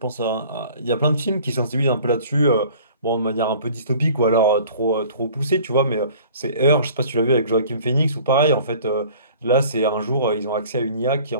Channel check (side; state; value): both; inverted; correlation -0.49